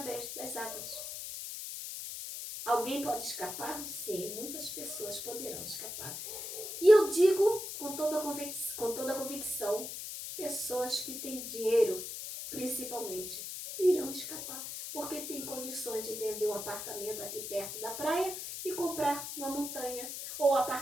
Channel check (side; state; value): left; noise; hiss, 7 dB below the sound